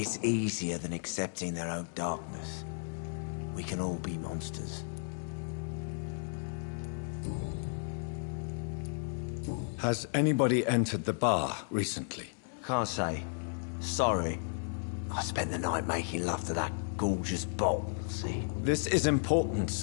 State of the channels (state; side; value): silent; right; digital silence